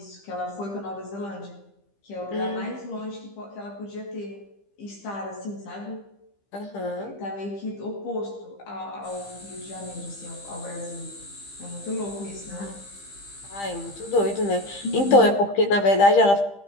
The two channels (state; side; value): late; right; 15 ms